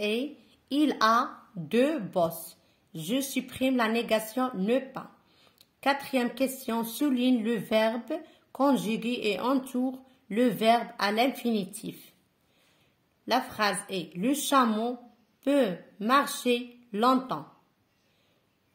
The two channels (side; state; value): both; identical; correlation 1.00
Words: il a deux bosses. Je supprime la négation ne pas. Quatrième question, souligne le verbe conjugué et entoure le verbe à l'infinitif. La phrase est le chameau peut marcher longtemps.